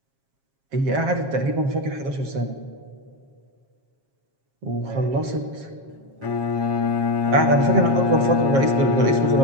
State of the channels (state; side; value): late; left; 7.4 ms